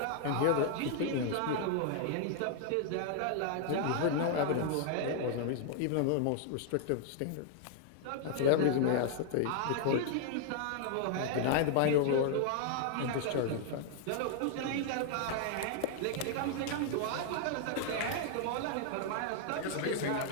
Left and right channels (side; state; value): both; different; correlation 0.00